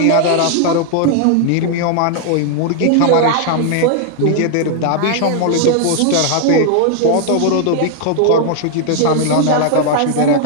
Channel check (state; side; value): different; both; correlation 0.00